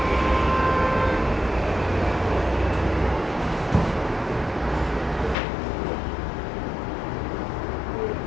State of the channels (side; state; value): right; drops out; at 5.4 s